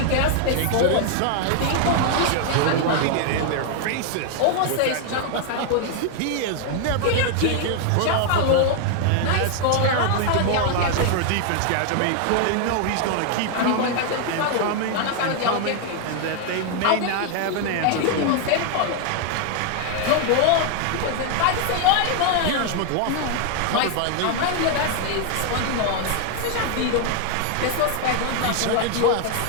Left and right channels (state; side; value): different; both; correlation 0.00